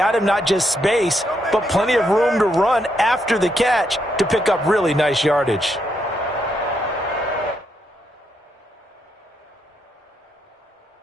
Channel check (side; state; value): both; normal; correlation 0.78